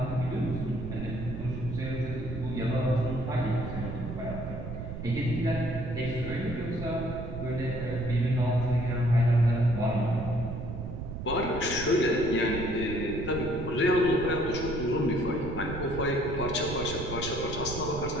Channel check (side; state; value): right; noise; rumble, 7 dB below the sound